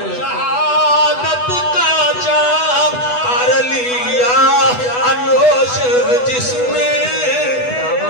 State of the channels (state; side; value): late; right; 8.1 ms